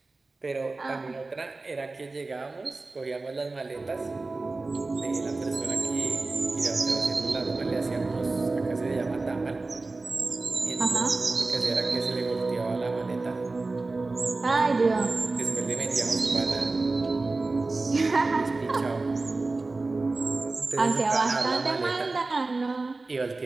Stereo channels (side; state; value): left; quieter; 3.4 dB